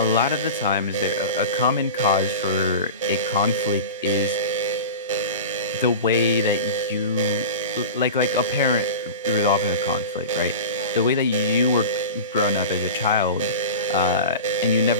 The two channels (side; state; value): both; inverted; correlation -0.31